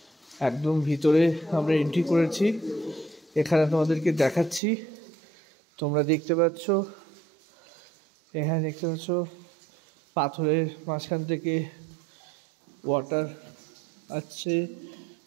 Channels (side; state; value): left; drops out; at 4.6 s